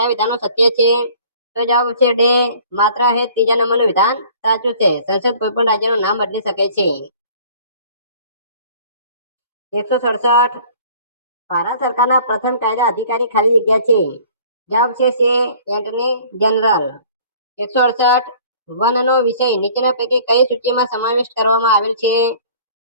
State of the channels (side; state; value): both; inverted; correlation -0.51